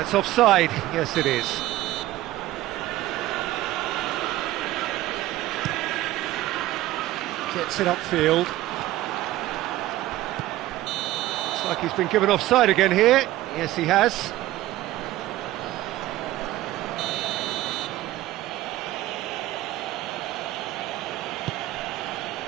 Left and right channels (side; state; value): left; quieter; 15.8 dB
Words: offside. Yes, it is. Gets it upfield. Looks like he's been given offside again here. Yes, he has.